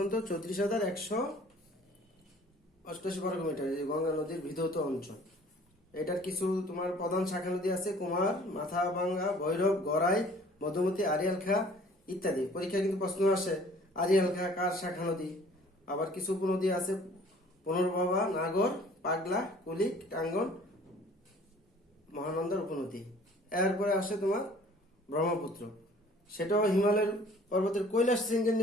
34,188 বর্গ কিলোমিটার, এই গঙ্গা নদীর বিধৌত অঞ্চল। এটার কিছু তোমার প্রধান শাখা নদী আছে, কুমার, মাথাভাঙ্গা, ভৈরব, গড়াই, মধুমতি, আরিয়াল খা ইত্যাদি। পরীক্ষা কিন্তু প্রশ্ন আসে, আরিয়াল খা কার শাখা নদী? আবার কিছু উপনদী আছে, পুনর্ভবা, নাগর, পাগলা, কুলিক, টাঙ্গন, মহানন্দার উপনদী। এরপরে আসে তোমার ব্রহ্মপুত্র, সেটাও হিমালয়ের পর্বতের কৈলাস শৃঙ্গের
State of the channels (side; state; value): both; normal; correlation 0.52